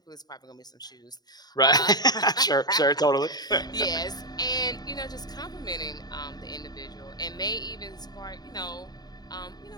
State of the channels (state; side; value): late; right; 0.19 ms